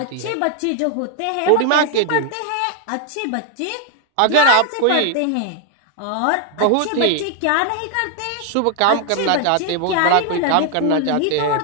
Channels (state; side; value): different; both; correlation 0.00